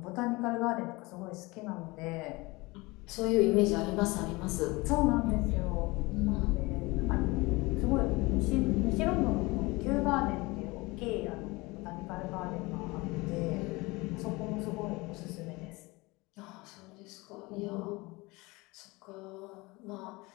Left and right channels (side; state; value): right; quieter; 23.4 dB